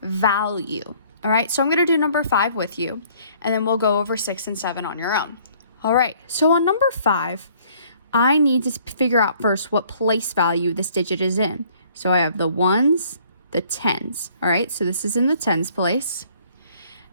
value. All right, so I'm going to do number 5 with you, and then we'll go over 6 and 7 on your own. All right, so on number 5, I need to figure out first what place value this digit is in. So I have the ones, the tens. All right, so this is in the tens place.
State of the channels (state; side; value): inverted; both; correlation -0.59